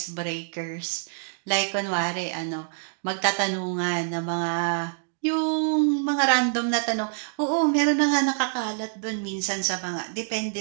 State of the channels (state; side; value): silent; left; digital silence